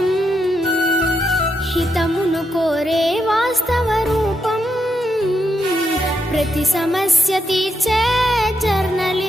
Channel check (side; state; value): both; normal; correlation 0.82